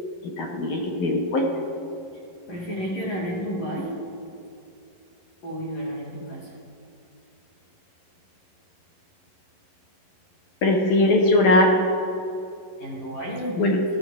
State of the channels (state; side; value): late; right; 12 ms